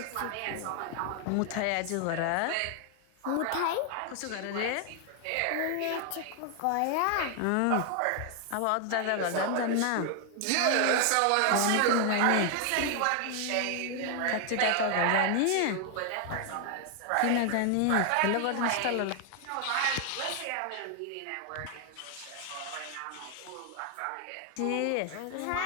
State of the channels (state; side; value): different; both; correlation 0.00